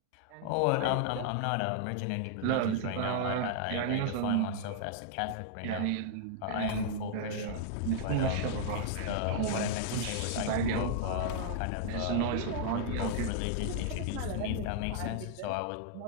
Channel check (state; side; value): different; both; correlation -0.01